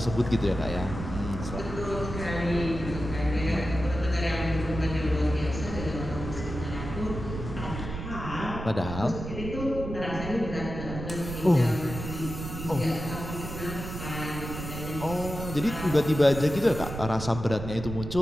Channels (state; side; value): noise; right; rumble, 7 dB below the sound